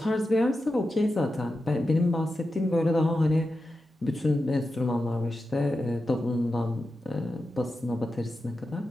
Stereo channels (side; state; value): both; normal; correlation 0.91